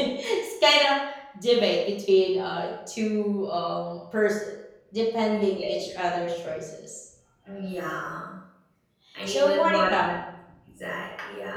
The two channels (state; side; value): identical; both; correlation 1.00